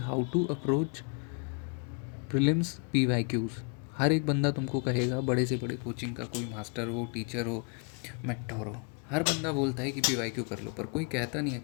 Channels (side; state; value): right; quieter; 35.6 dB